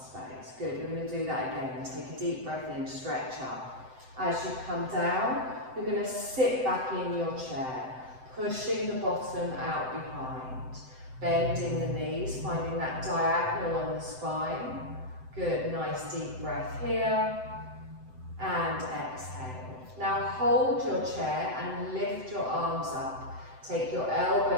Good, we're going to do that again. Take a deep breath in, stretch up. As you come down, you're going to sit back in your chair, pushing the bottom out behind, bending the knees, finding that diagonal on the spine. Good, nice deep breath here, and exhale. Now hold your chair and lift your arms up. Take your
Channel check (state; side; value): late; left; 7.8 ms